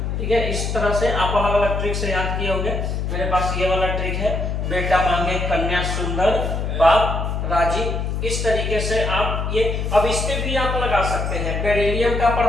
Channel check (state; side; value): noise; left; hum, 2 dB below the sound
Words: ठीक है, इस तरह से आप अलग अलग ट्रिक से याद किए होंगे। मेरे पास ये वाला ट्रिक है, बेटा मांगे कन्या सुंदर बाप राजी। इस तरीके से आप ये, अब इस पे भी आप लगा सकते हैं। बेरिलियम का